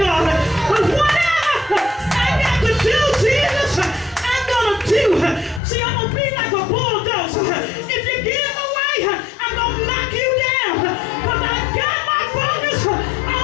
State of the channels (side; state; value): right; drops out; at 5.6 s